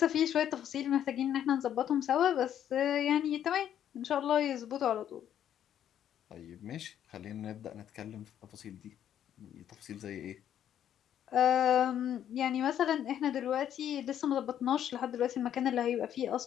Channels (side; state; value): right; quieter; 10.2 dB